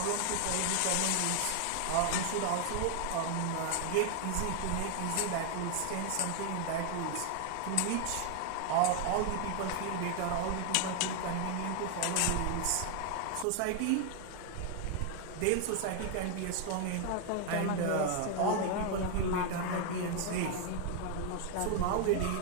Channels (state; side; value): different; both; correlation 0.00